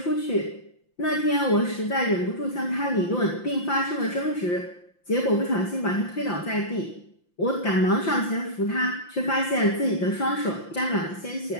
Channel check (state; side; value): late; right; 5.8 ms